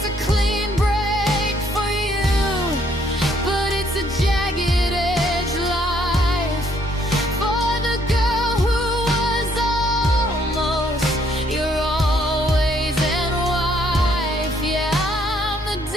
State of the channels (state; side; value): normal; both; correlation 0.67